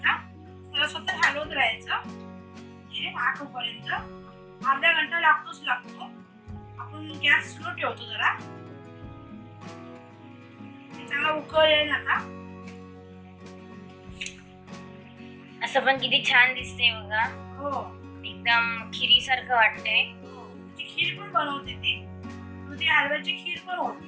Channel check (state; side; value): identical; both; correlation 1.00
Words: त्याला स्वतः हलवत राहायचं हे आटोपर्यंत. अर्धा घंटा लागतो. आपण गॅस स्लो ठेवतो जरा, चांगला उकळेल. आता असं पण किती छान दिसते बघा, हो एकदम खिरी सारखं वाटतंय. खीर पण बनवते ती, दुधी हलव्याची खीर पण